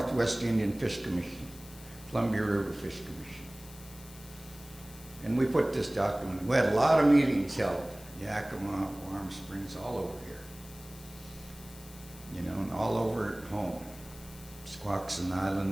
Indian Fish Commission, Columbia River Fish Commission. And we put this document, we had a lot of meetings held, Yakima, Warm Springs, all over here. You know, and all over at home, Squaxin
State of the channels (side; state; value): left; noise; hiss, 19 dB below the sound